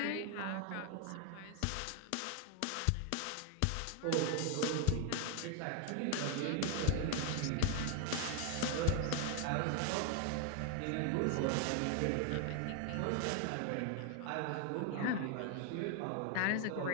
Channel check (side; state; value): both; different; correlation 0.01